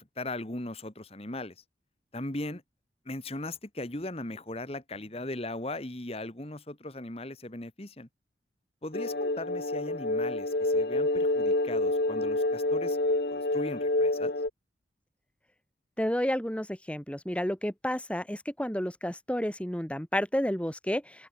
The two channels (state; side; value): normal; both; correlation 0.32